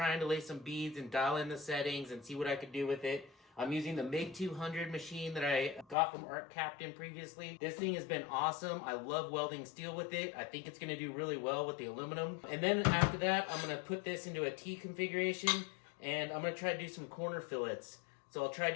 to lay some beads and dial in the settings and see what I could do with it. I'm using the MIG200 machine that I got from Arccaptain previously. This thing has been awesome. I love welding steel with it. I think it's going to do really well with the aluminum. And then after that, I'm going to put this into a T configuration, and I'm going to try to do some corner fillets. So I'll try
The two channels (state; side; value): drops out; right; at 6.0 s